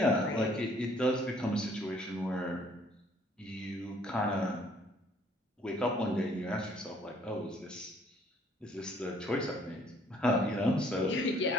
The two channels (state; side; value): normal; both; correlation 0.61